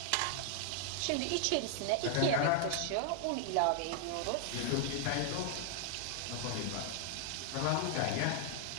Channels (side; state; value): both; different; correlation 0.00